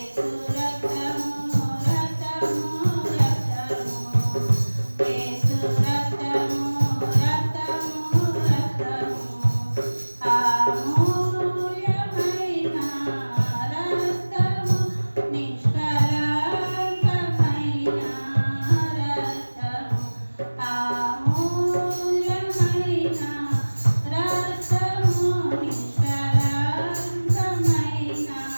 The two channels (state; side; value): inverted; both; correlation -1.00